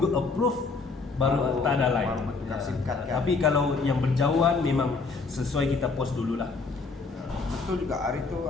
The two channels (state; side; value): quieter; right; 4.3 dB